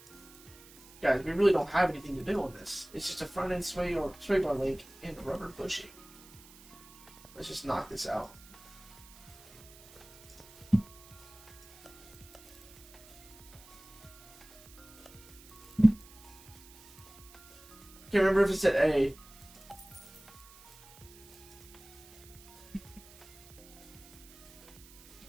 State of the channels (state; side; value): noise; right; hiss, 21 dB below the sound